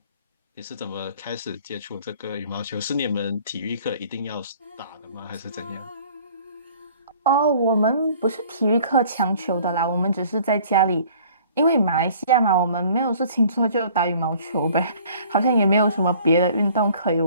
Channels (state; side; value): inverted; both; correlation -0.53